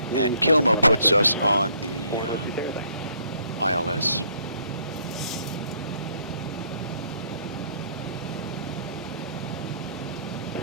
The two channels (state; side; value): inverted; both; correlation -0.65